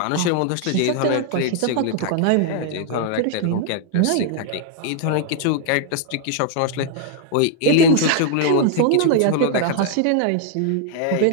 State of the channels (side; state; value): both; different; correlation 0.00